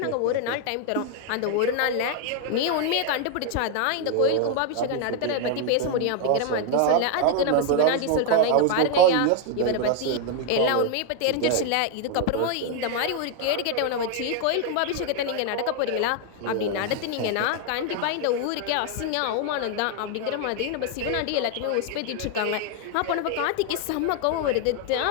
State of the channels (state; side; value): different; both; correlation 0.00